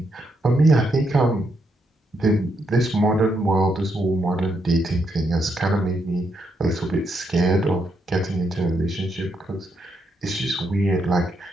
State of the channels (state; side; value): normal; both; correlation 0.79